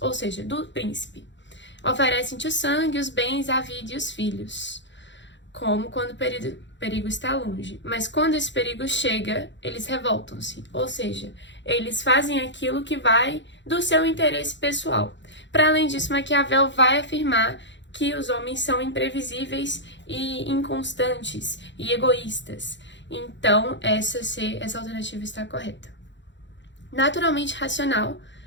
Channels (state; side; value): late; right; 0.53 ms